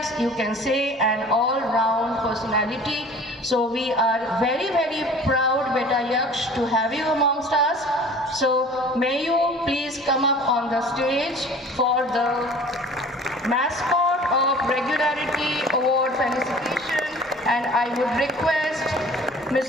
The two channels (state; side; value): normal; both; correlation 0.46